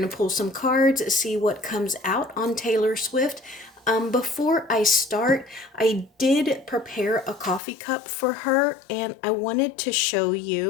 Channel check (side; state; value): right; drops out; at 7.6 s